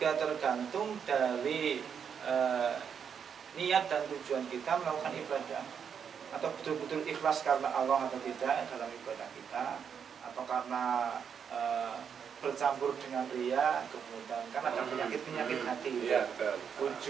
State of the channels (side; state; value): left; quieter; 7.3 dB